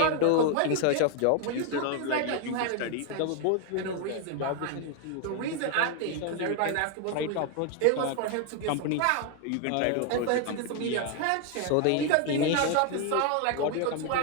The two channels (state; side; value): different; both; correlation 0.01